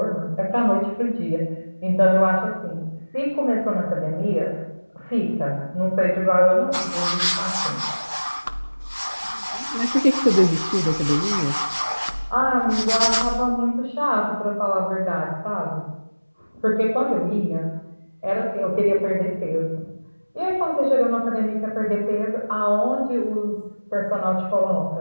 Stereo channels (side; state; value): both; inverted; correlation -1.00